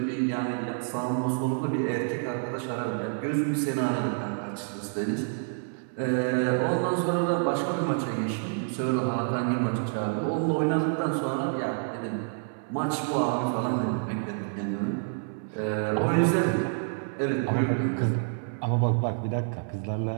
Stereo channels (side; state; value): left; silent; 59 dB below the other